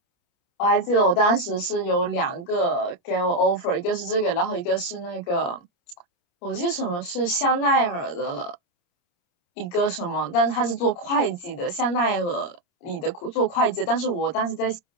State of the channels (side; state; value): right; late; 29 ms